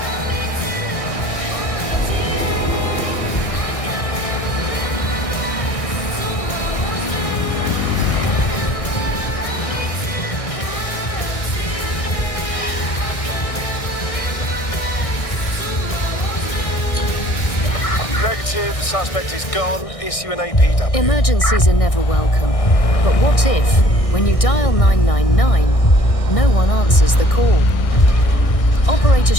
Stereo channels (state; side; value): late; right; 1.6 ms